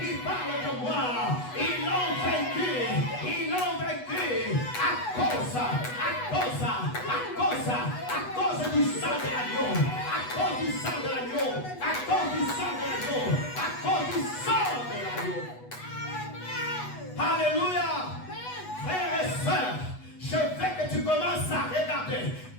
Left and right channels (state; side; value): late; right; 8.1 ms